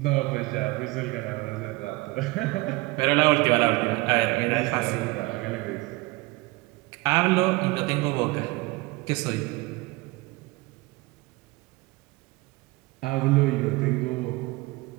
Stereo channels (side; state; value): left; quieter; 22.7 dB